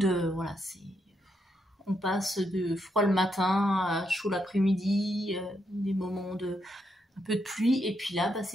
Voilà, on passe de froid le matin à chaud l'après-midi, des moments de un peu de pluie, et puis là, bah,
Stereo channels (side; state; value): both; normal; correlation 0.79